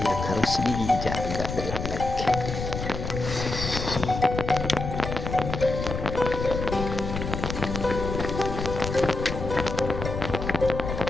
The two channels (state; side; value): noise; left; rumble, 5 dB below the sound